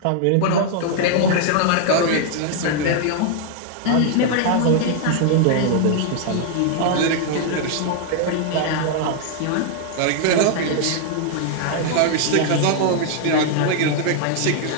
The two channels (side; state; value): both; different; correlation -0.01